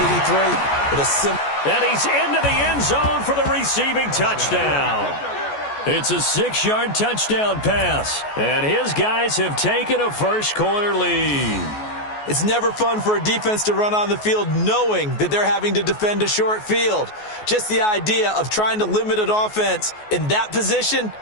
with a simple... And he's into the end zone for the receiving touchdown. It's a 6-yard touchdown pass. And his guys have taken a first-quarter lead. It's never fun for a defense to run on the field knowing that they're having to defend a short field. Just the idea of trying to limit an offense in that position,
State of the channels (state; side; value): late; right; 14 ms